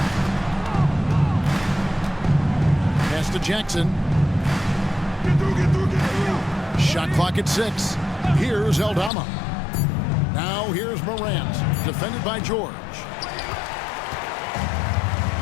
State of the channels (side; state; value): right; drops out; at 9.1 s